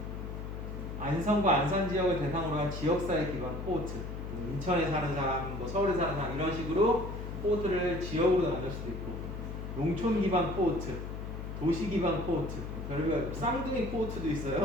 안성과 안산 지역을 대상으로 한 지역사회 기반 코호트, 인천에 사는 사람, 뭐 서울에 사는 사람 이런 식으로 코호트를 지역으로 나눌 수도 있고, 농촌 기반 코호트, 도시 기반 코호트, 별별 쌍둥이 코호트도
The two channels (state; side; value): noise; left; hum, 7 dB below the sound